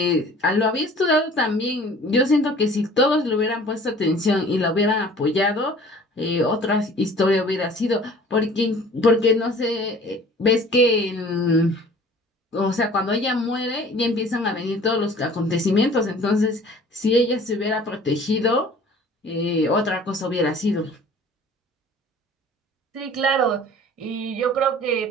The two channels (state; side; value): normal; both; correlation 0.48